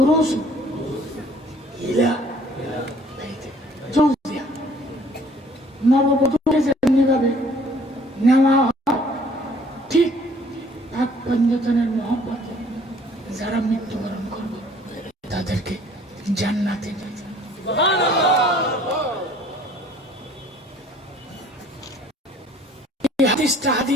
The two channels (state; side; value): normal; both; correlation 0.56